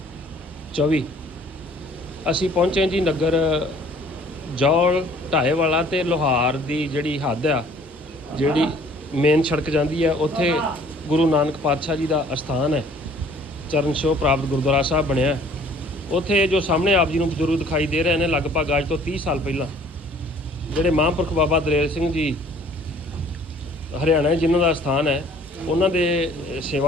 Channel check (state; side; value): normal; both; correlation 0.55